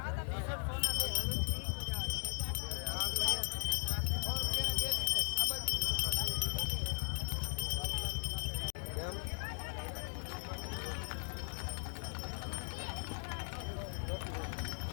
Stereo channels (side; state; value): right; silent; digital silence